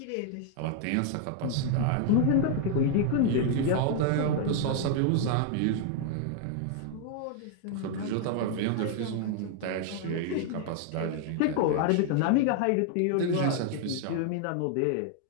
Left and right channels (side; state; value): both; different; correlation 0.00